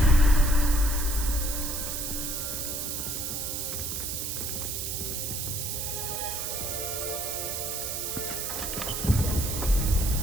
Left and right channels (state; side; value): noise; right; hiss, 3 dB below the sound